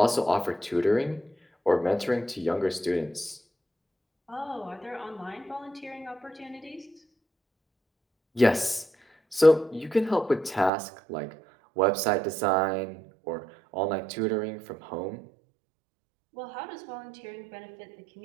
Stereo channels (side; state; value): left; drops out; at 10.7 s